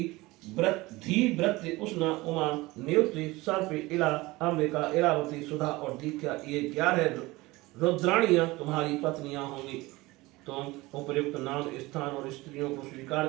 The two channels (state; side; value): quieter; left; 20.9 dB